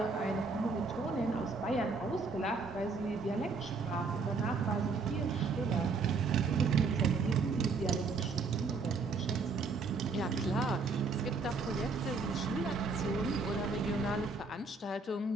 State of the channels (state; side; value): quieter; left; 4.2 dB